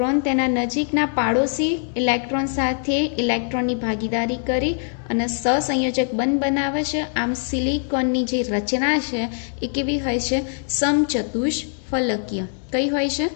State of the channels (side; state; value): right; silent; 64 dB below the other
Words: તેના નજીકના પાડોશી ઇલેક્ટ્રોન સાથે ઇલેક્ટ્રોનની ભાગીદારી કરી અને સહસંયોજક બંધ બનાવે છે. આમ સિલિકોનની જે રચના છે એ કેવી હોય છે? સમચતુષ્ફલકીય. કઈ હોય છે?